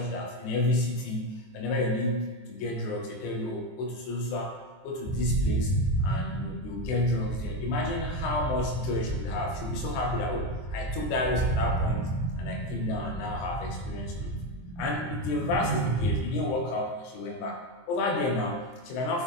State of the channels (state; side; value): late; right; 23 ms